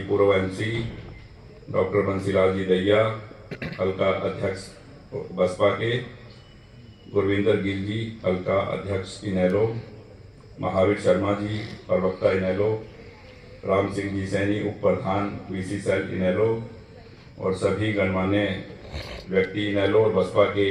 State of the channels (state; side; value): identical; both; correlation 1.00